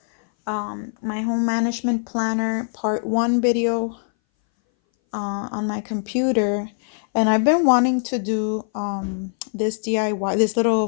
my home management planner part 1 video on my computer, and I've been wanting to do this DIY, this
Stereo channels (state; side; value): silent; right; 60 dB below the other